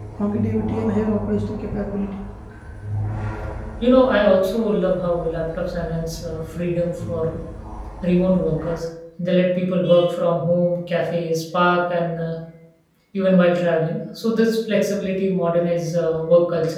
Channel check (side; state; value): both; identical; correlation 1.00